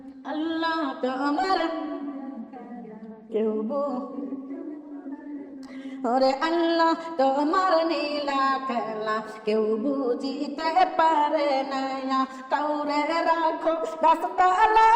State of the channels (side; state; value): both; identical; correlation 1.00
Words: আল্লাহ তোমার কেউ ওরে আল্লাহ তোমার নীলা খেলা কেউ বুঝিতে পারে না, কাউরে রাখো